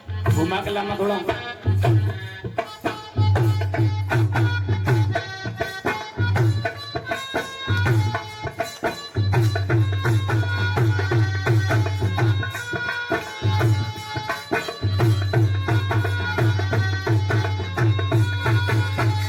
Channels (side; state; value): both; identical; correlation 1.00